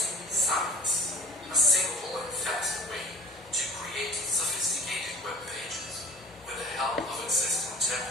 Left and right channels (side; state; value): both; normal; correlation 0.43